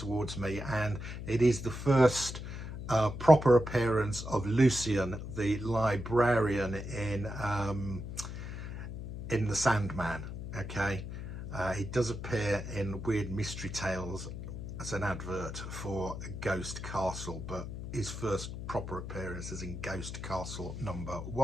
me, and it is the first proper appearance of Lucian, the librarian in The Sandman. Okay, he does appear in Weird Mystery Tales as an advert for Ghost Castle, but his first proper appearance is in Ghost Castle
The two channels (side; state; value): left; noise; hum, 7 dB below the sound